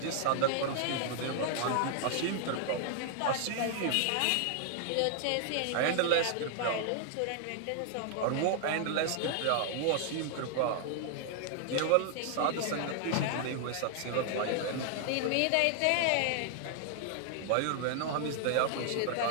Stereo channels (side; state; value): both; different; correlation 0.00